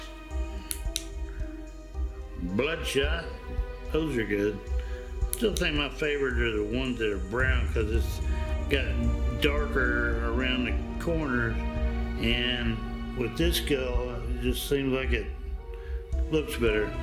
Bloodshot. Those are good. still think my favorite are the ones that are brown because it's got darker around the corners, and with this skull it just seems like it looks better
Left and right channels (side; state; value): both; identical; correlation 1.00